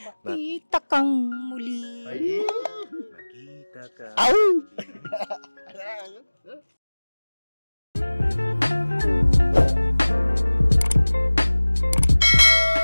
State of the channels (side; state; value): both; inverted; correlation -1.00